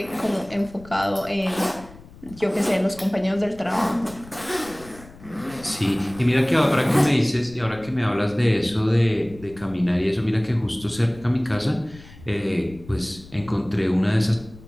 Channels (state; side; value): noise; left; rumble, 20 dB below the sound